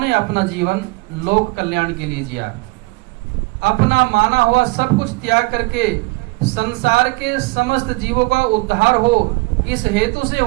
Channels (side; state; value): left; quieter; 25.1 dB